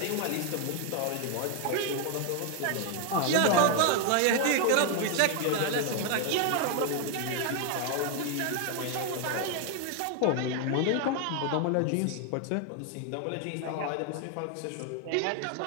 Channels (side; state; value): both; different; correlation 0.01